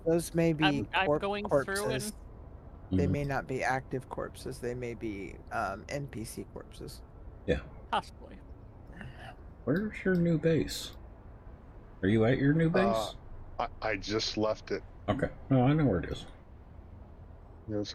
Those may be I'm going corpses. through and They may not be active corpses. They may be NPC corpses. Yeah. possibly. Where's your new base? Are you at your new base? I just left it. Okay. No, I know where it is. You know,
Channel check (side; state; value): both; identical; correlation 1.00